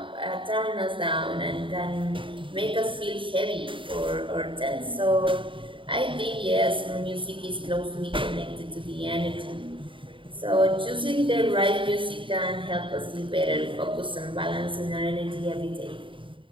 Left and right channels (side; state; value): left; late; 0.25 ms